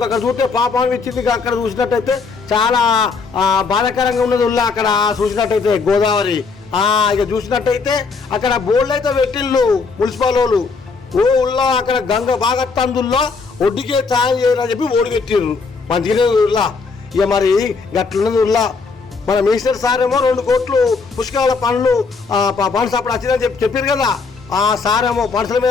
చూస్తే పాపం ఇచ్చింది. అక్కడ చూసినట్టయితే చాలా బాధాకరంగా ఉన్నది. ఉల్లా అక్కడ చూసినట్టయితే గోదావరి ఇక చూసినట్టయితే అక్కడ బోర్డులు అయితే పెట్టిళ్ళు మున్సిపల్ వాళ్ళు. ఉల్లా అక్కడ గంగ బాగా తందుల్లో ఒడ్డుకే ఛాయం చేయాలని చెప్పి ఓడి పెట్టిర్రు. మంచిగానే ఉల్లా. ఇక మరి గట్లున్నది ఉల్లా. మన మినిస్టర్ సార్ ఏమో 2 కోట్లు పుష్కరాల పనులు ఫండ్స్ అప్పుడు వచ్చిందని చెప్పారు కదా. ఆ సార్ ఏమో పనుల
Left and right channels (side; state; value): right; quieter; 4.6 dB